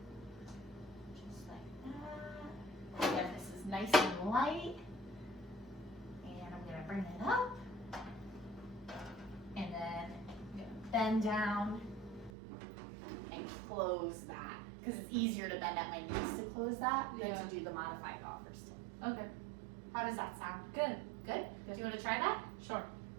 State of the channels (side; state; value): left; drops out; at 12.3 s